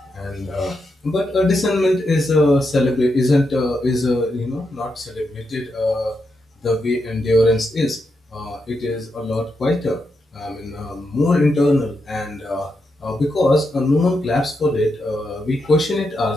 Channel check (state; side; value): normal; both; correlation 0.84